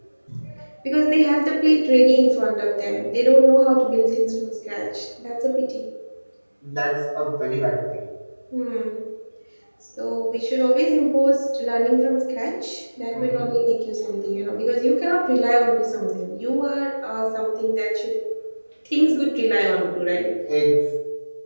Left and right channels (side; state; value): both; inverted; correlation -1.00